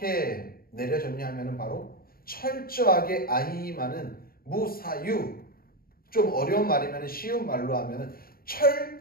내려졌냐 하면 바로 철저하게 아히히만은 무사유, 좀 어려운 말이면 쉬운 말로 하면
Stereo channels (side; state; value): right; late; 0.43 ms